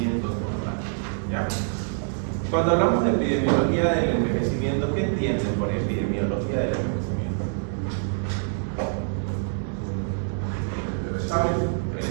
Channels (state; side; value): silent; left; digital silence